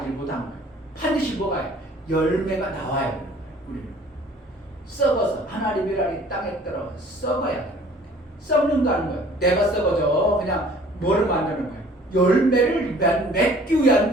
못한 거예요. 반드시 뭐가 해요? 열매가 나와야 되는 거예요. 우리는 썩어서 하나님 미랄이 땅에 떨어 썩어야 되는 거예요. 썩는다는 거예요. 내가 썩어져. 그냥 뭐를 만드는 거예요? 열매를 맺기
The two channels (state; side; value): normal; both; correlation 0.52